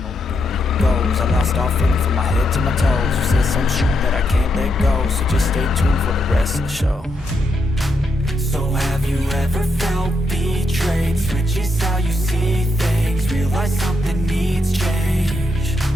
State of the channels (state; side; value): normal; both; correlation 0.81